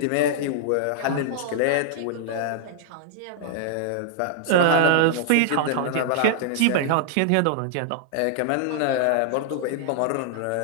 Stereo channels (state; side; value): different; both; correlation -0.01